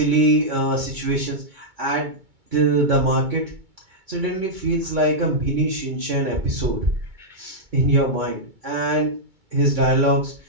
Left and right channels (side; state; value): left; late; 2.2 ms